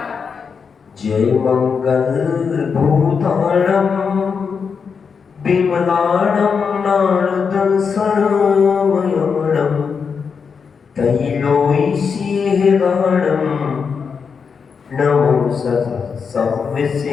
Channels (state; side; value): quieter; right; 5.9 dB